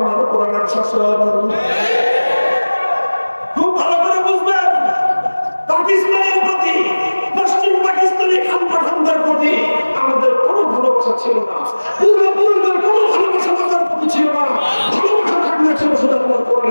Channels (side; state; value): both; inverted; correlation -1.00